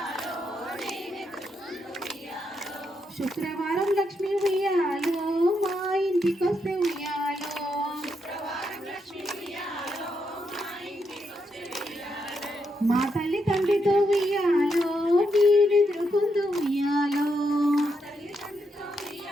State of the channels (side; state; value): both; normal; correlation 0.81